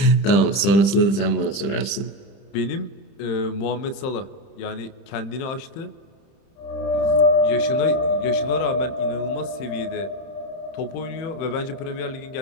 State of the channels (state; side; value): late; right; 30 ms